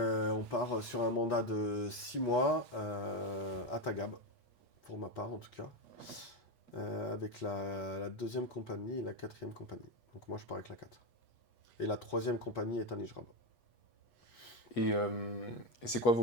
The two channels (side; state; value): right; late; 8.3 ms